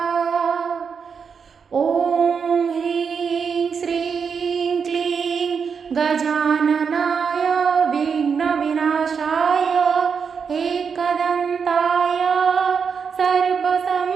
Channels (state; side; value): quieter; left; 6.2 dB